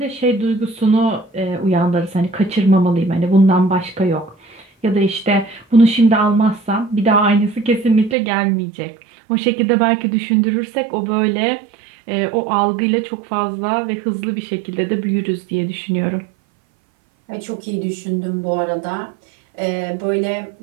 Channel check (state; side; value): drops out; left; at 8.2 s